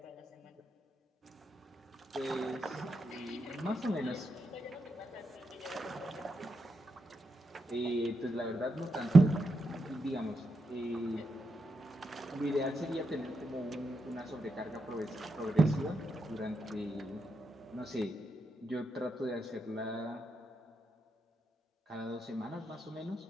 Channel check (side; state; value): both; normal; correlation 0.84